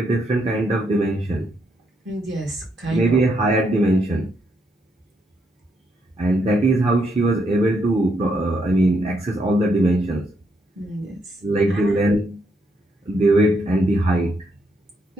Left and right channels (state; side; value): normal; both; correlation 0.77